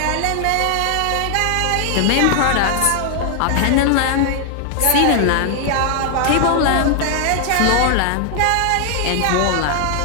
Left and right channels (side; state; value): both; different; correlation 0.00